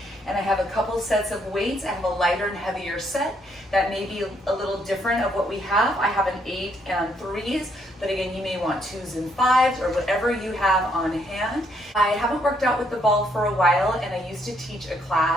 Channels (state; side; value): normal; both; correlation 0.71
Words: And I have a couple sets of weights. I have a lighter and heavier set that may be a little different of what we have. I have an 8 and 3s, but again, you may want 2s and 5s or whatever you have on hand. I haven't worked out with the ball for a while, and I used to teach a